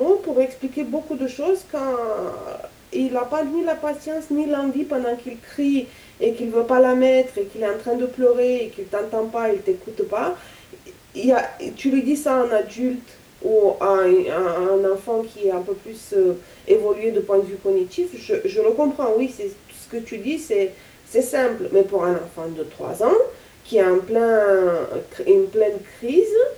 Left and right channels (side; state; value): both; identical; correlation 1.00